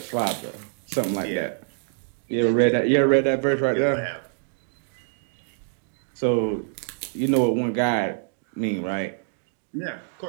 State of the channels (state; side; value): silent; left; digital silence